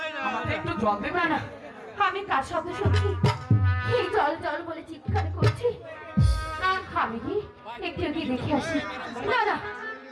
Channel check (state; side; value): identical; both; correlation 1.00